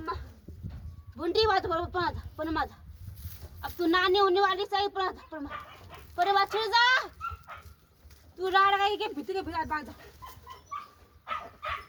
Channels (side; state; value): both; identical; correlation 1.00